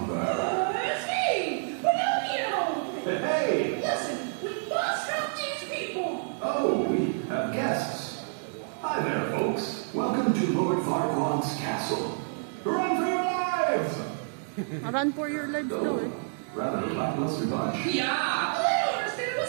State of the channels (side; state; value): left; silent; digital silence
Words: It's me, Pinocchio! Hey! Listen, we must help these people! Oh, we have guests. Hi there, folks. Welcome to Lord Farquaad's castle. Run for your lives! Run for your lives daw eh. Rather lackluster bunch. Yeah, I don't understand